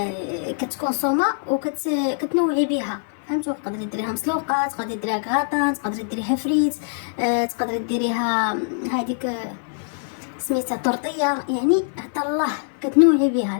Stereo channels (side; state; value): right; silent; digital silence